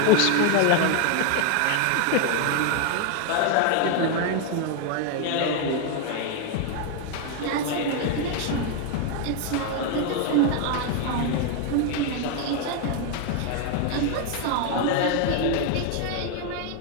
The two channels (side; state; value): both; different; correlation 0.01